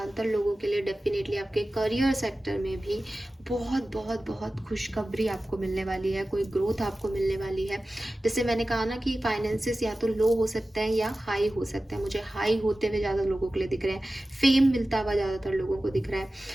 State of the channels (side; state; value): both; normal; correlation 0.95